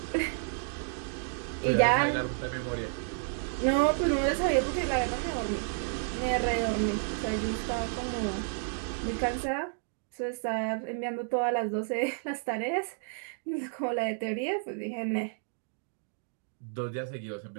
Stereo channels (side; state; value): left; silent; digital silence